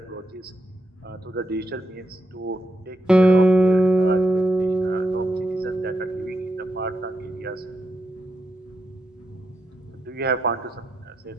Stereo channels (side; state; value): both; normal; correlation 0.83